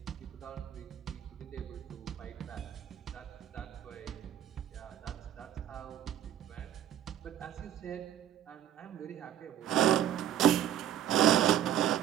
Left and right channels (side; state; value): left; quieter; 10.9 dB